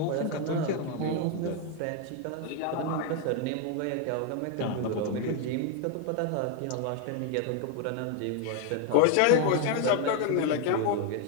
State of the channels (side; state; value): both; different; correlation 0.01